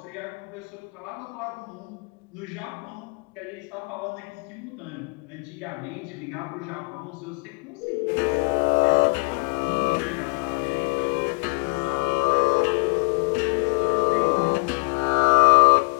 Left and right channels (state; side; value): quieter; right; 32.7 dB